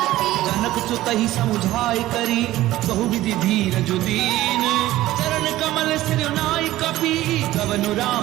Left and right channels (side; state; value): left; quieter; 15.6 dB